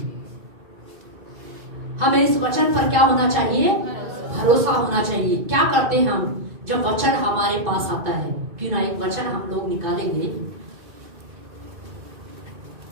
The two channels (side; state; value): left; late; 2.5 ms